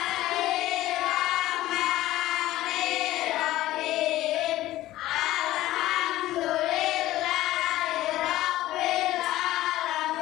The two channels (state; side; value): quieter; right; 15.6 dB